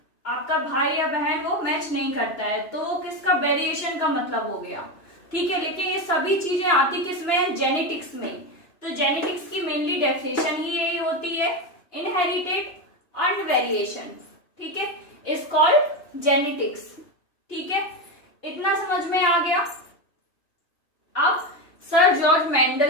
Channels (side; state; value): right; late; 2.9 ms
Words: आपका भाई या बहन वो मैच नहीं करता है, तो वो किसका? वेरिएशन का मतलब हो गया। ठीक है, लेकिन ये सभी चीजें आती किसमें? जेनेटिक्स में। तो जेनेटिक्स की मेनली डेफिनेशन ही यही होती है, इनहेरिटेड एंड वेरिएशन। ठीक है, इज कॉल्ड जेनेटिक्स। ठीक है, इतना समझ में आ गया।